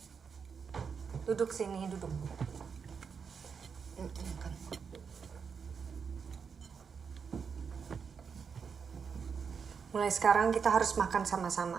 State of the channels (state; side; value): quieter; left; 6.2 dB